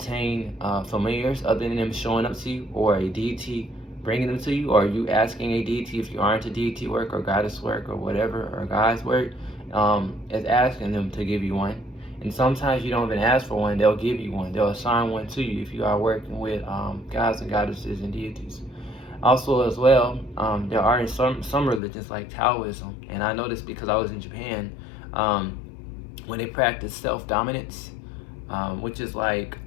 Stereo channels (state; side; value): drops out; right; at 21.8 s